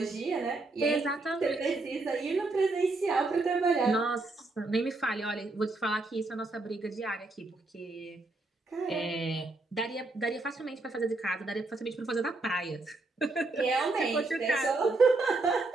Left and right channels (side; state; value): left; quieter; 3.2 dB